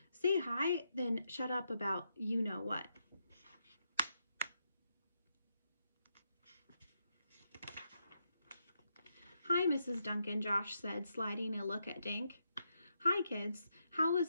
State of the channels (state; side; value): inverted; both; correlation -0.82